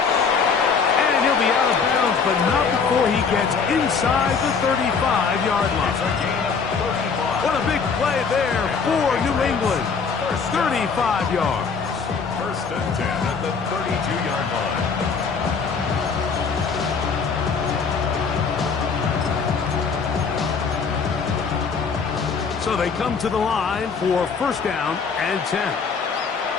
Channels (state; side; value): quieter; right; 5.5 dB